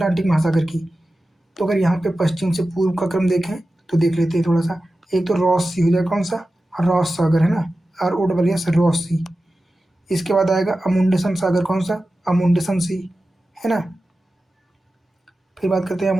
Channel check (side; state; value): both; normal; correlation 0.94